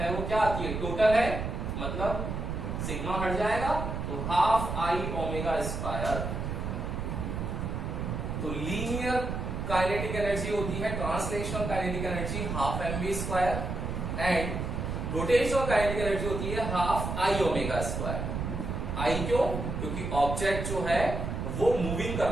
वो क्या आती है, टोटल है मतलब सिग्मा हट जाएगा तो हाफ आई ओमेगा स्क्वायर। तो लीनियर काइनेटिक एनर्जी होती है, translational kinetic energy half mv square, and rotational kinetic energy होती है हाफ आई ओमेगा स्क्वायर। आई क्यों, क्योंकि ऑब्जेक्ट जो है वो मूविंग कर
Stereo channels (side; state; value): right; noise; rumble, 3 dB below the sound